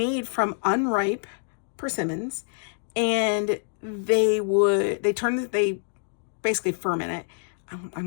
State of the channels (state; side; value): silent; right; digital silence